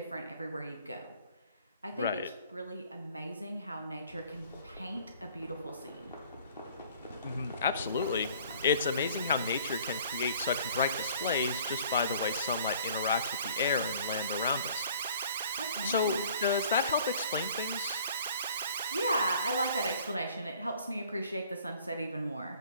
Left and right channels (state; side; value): inverted; both; correlation -0.53